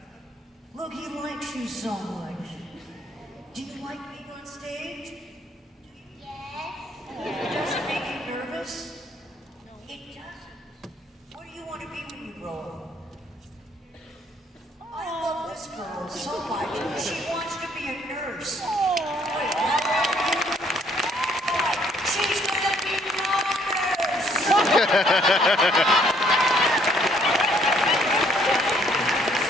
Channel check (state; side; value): normal; both; correlation 0.65